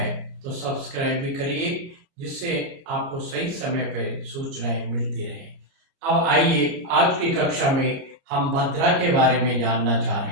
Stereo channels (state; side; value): late; left; 30 ms